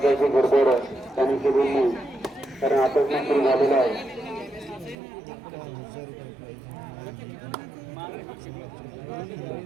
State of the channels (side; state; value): left; drops out; at 5.0 s